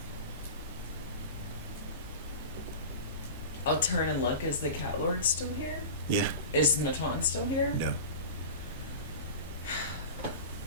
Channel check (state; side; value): inverted; both; correlation -0.32